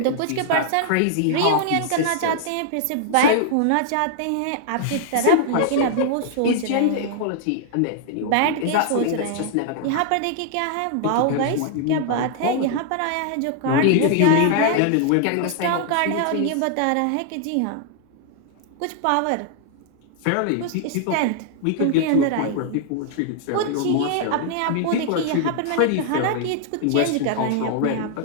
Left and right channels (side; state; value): both; different; correlation -0.01